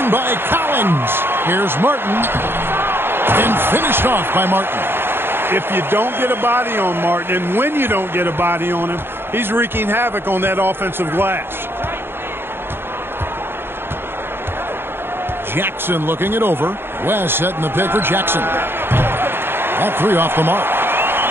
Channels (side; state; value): left; late; 0.11 ms